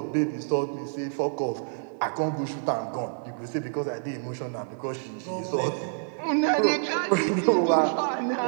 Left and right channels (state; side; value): silent; left; digital silence